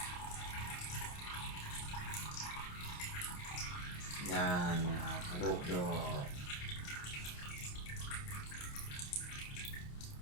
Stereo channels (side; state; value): right; late; 28 ms